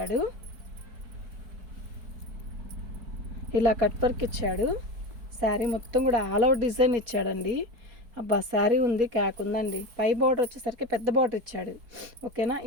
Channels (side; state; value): left; late; 4.6 ms